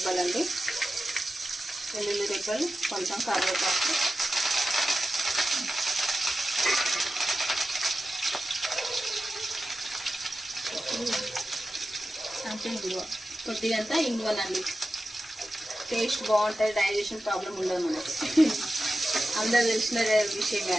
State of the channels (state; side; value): normal; both; correlation 0.93